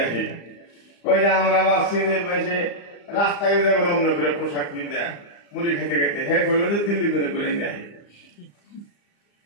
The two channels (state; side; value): late; right; 35 ms